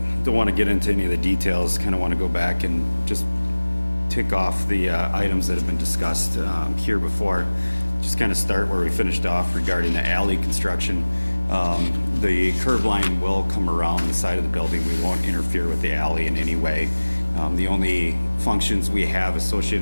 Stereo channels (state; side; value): inverted; both; correlation -1.00